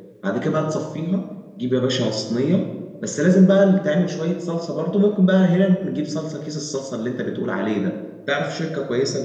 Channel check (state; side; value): identical; both; correlation 1.00